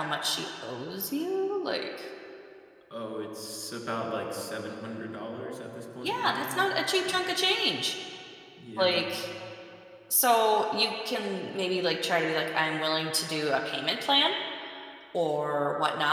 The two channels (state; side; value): identical; both; correlation 1.00